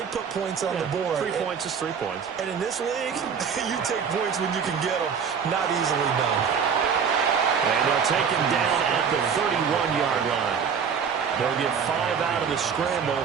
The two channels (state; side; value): quieter; left; 6.7 dB